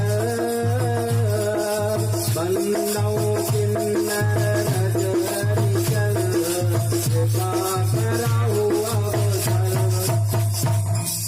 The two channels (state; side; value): identical; both; correlation 1.00